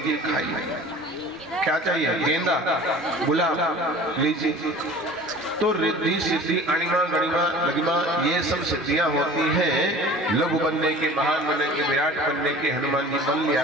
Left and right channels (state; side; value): normal; both; correlation 0.42